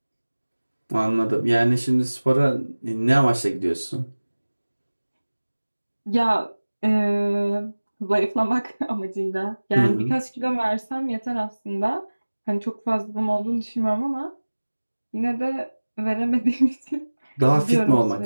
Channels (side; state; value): both; inverted; correlation -1.00